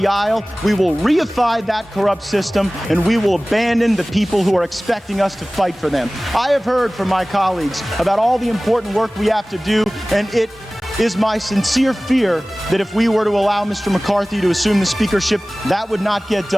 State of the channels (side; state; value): both; normal; correlation 0.98